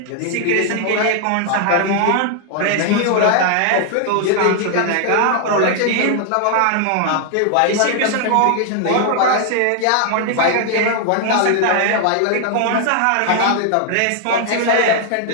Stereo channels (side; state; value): both; different; correlation 0.00